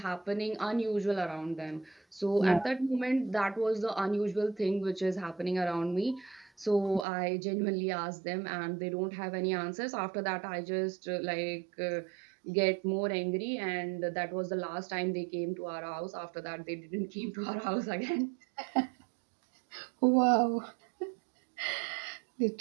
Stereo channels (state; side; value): drops out; left; at 7.1 s